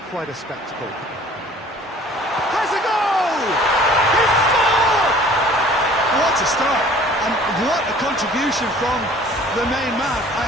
quite a spectacle. Has a goal! He scored! What a start, and what a contribution from the main man. I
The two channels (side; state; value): both; normal; correlation 0.50